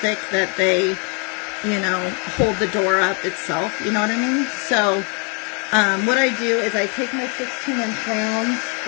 that they, you know, hold the door up itself. You know what I mean? So, what I do is I take my 16-inch rounds,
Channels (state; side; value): quieter; right; 35.8 dB